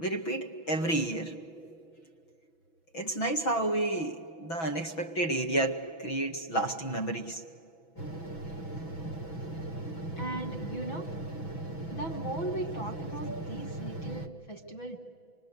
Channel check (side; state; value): right; late; 6.1 ms